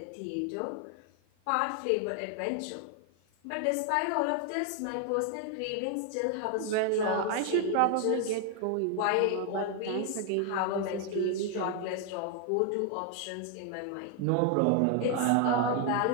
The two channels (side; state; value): both; different; correlation 0.00